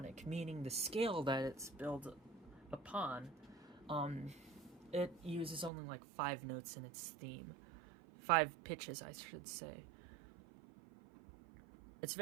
meaning the scale that it's built upon, it uses only like 5 notes in its theme. 5 pitches, I should say. It's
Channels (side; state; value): left; drops out; at 5.7 s